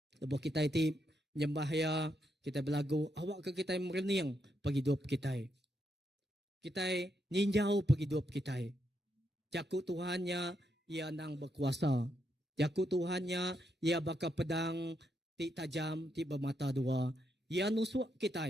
lebuh kita itu nyembah ya kita belagu. Awak ke kita merening pagi hidup kita. Kita ninjau penghidup kita. Jakut Tuhannya ia nang berkuasa. Jaku Tuhannya, ia baka pedang ti tajam ti bermata dua. Ia nusuk kita.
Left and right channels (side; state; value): both; normal; correlation 0.80